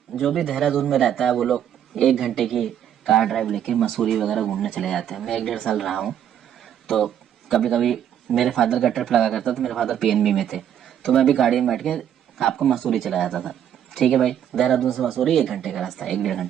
जो भी देहरादून में रहता है वो लोग 1 घंटे की कार ड्राइव लेके मसूरी वगैरह घूमने चले जाते हैं। मैं 1 डेढ़ साल रहा हूँ, तो कभी कभी मेरे फादर का ट्रिप लगा करता था। मेरे फादर पीएनबी में थे, तो मैं भी गाड़ी में बैठ के आपको मसूरी चला जाता था। ठीक है भाई, देहरादून से मसूरी 1 घंटे का रास्ता, 1 डेढ़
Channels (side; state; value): left; quieter; 9.8 dB